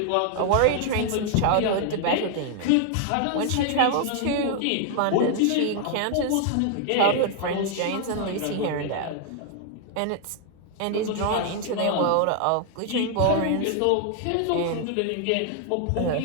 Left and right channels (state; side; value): different; both; correlation 0.00